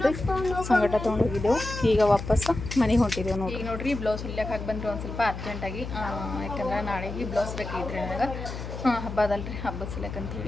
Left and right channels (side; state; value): left; noise; hum, 7 dB below the sound